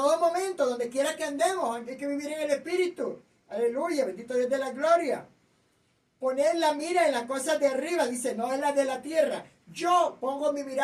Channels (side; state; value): both; identical; correlation 1.00